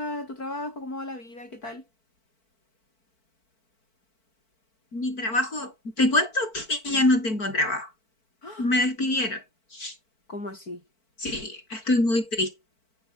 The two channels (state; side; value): late; right; 4.5 ms